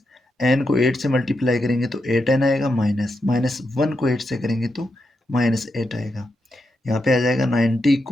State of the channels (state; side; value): normal; both; correlation 0.85